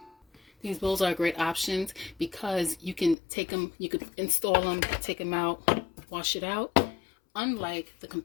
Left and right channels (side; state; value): right; drops out; at 3.2 s